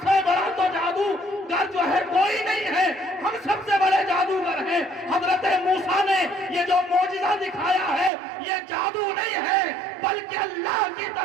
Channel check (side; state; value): left; drops out; at 8.1 s